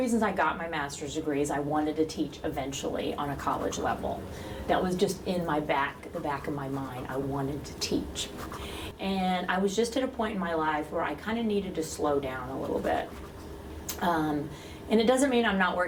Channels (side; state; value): both; identical; correlation 1.00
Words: I got my master's degree is I wanted to teach eventually on a college level. That was just in the back of my mind. I wanted to teach. And I was just at a point in my life where I kind of needed to slow down a little bit. And it doesn't mean I'm not